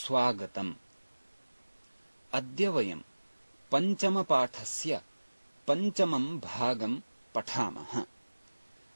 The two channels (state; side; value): inverted; both; correlation -1.00